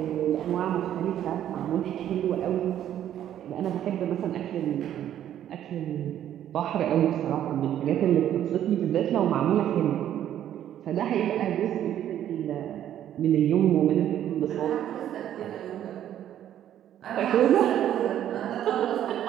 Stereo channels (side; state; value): left; quieter; 11.1 dB